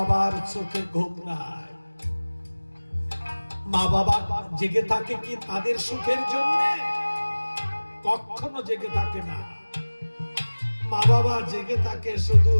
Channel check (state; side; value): inverted; both; correlation -1.00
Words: চোখে ঘুম নাই। মা বাবা জেগে থাকে কি তাদের সুখের জন্য? কখনো জেগে থাকে না। মা বাবা জেগে থাকে শুধু